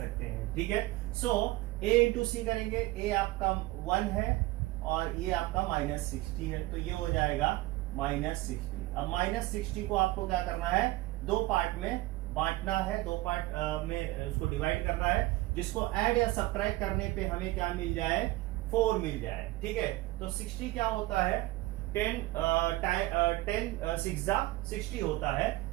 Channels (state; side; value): quieter; left; 18.6 dB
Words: हैं, ठीक है। सो A इंटू सी करेंगे, A आपका 1 है और ये आपका माइनस 60 है, तो ये हो जाएगा माइनस 60। अब माइनस 60 को आपको क्या करना है? दो पार्ट में बांटना है, दो पार्ट में उसको डिवाइड करना है, जिसको ऐड या सब्ट्रैक्ट करने पे हमें क्या मिल जाए? 4 मिल जाए, ठीक है। तो 60 क्या होता है? 10 6 60 होता है।